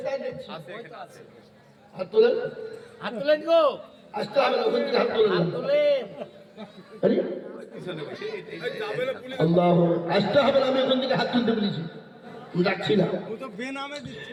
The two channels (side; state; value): both; identical; correlation 1.00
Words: হাত তোলেন, হাত তুলেন গো। আসতে হবে না, ওখান থেকে হাত তোলেন। হাত তুলেন। আরে আল্লাহ, আসতে হবে না, আমি ওখান থেকে হাত তুলতে বলেছি, যাচ্ছি না।